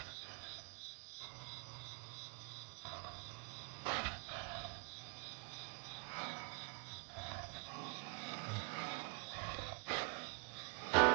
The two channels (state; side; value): quieter; left; 34.8 dB